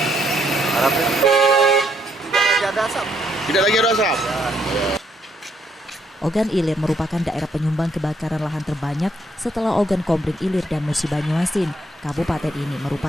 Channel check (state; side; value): normal; both; correlation 0.72